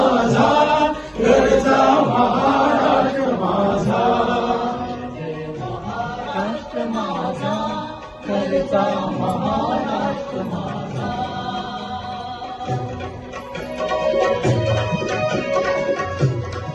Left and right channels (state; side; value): identical; both; correlation 1.00